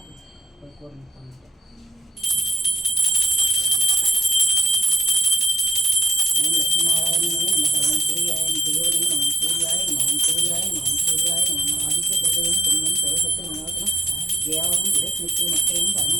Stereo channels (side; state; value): both; normal; correlation 0.74